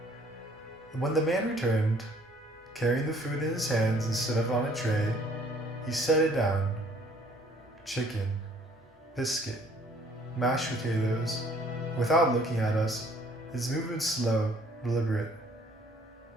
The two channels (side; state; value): both; normal; correlation 0.59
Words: When the man returned, carrying the food in his hands instead of on a tray, he set it down. Chicken, biscuit, mashed potatoes. Without looking at us, his movement slow, deliberate.